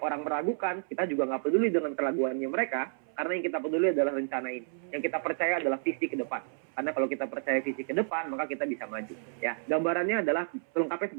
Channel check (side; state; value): left; silent; 57 dB below the other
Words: orang meragukan, kita juga nggak peduli dengan keraguannya mereka, karena yang kita peduli adalah rencana ini. Yang kita percaya adalah visi ke depan. Karena kalau kita percaya visi ke depan, maka kita bisa maju. Ya, gambarannya adalah lengkapnya